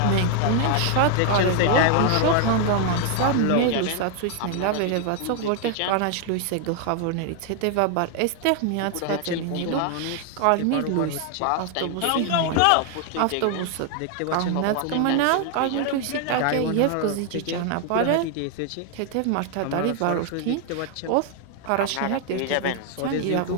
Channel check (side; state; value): both; different; correlation 0.00